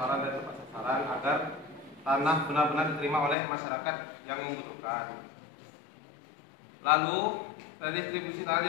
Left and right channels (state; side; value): drops out; right; at 3.4 s